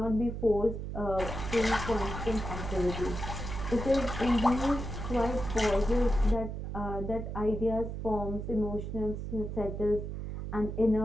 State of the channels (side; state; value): right; noise; hum, 6 dB below the sound